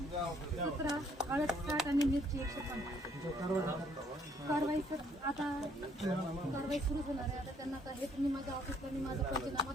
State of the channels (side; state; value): both; normal; correlation 0.65